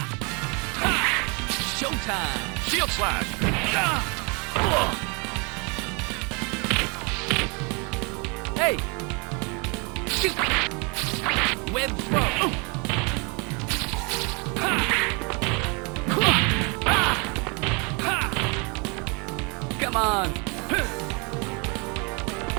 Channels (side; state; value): left; quieter; 31.7 dB